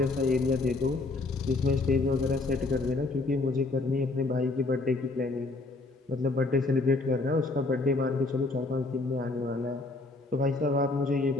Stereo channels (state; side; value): quieter; right; 3.3 dB